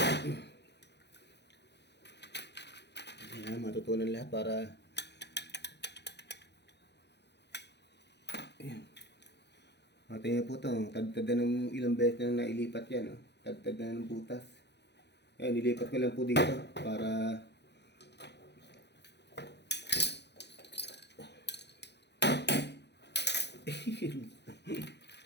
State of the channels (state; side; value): late; right; 0.50 ms